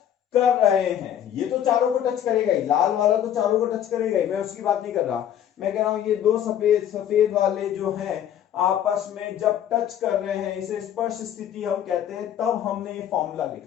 कर रहे हैं। ये तो चारों को टच करेगा ही, लाल वाला तो चारों को टच करेगा ही, मैं उसकी बात नहीं कर रहा, मैं कह रहा हूं ये दो सफेद वाले जो हैं आपस में जब टच कर रहे हैं इसे स्पर्श स्थिति हम कहते हैं। तब हमने ये फॉर्मूला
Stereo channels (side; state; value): right; quieter; 10.2 dB